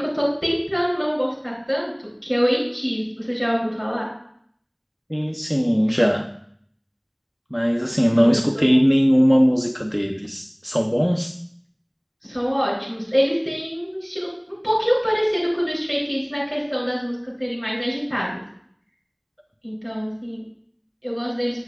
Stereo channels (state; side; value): identical; both; correlation 1.00